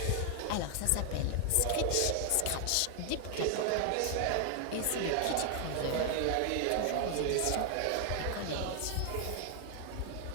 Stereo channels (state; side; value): different; both; correlation 0.00